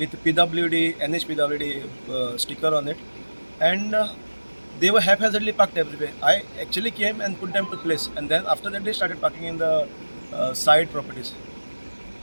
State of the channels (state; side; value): inverted; both; correlation -1.00